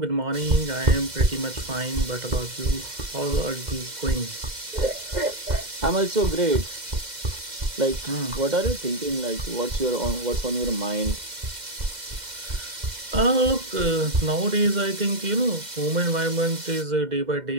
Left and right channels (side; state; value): left; late; 2.1 ms